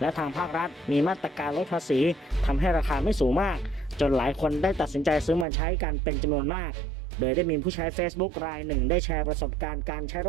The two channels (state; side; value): drops out; left; at 5.5 s